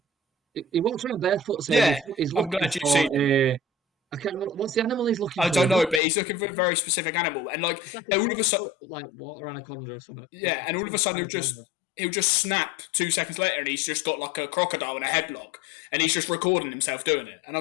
He walks around barefoot saying Yeah, he's I'm looking glad you've for seen I can't remember what's the animal he's looking for. I don't know, but he's looking for a very specific animal, and like, It's like all a of a sudden, like water anaconda or something. yeah, and all of a sudden he'll just snap 2 seconds later, and he's just got like a crocodile in a headlock, and he's just recording himself doing it, and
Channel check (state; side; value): drops out; right; at 6.0 s